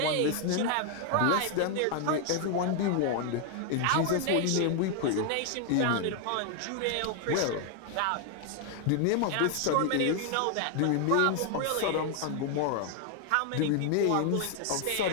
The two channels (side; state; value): both; different; correlation 0.00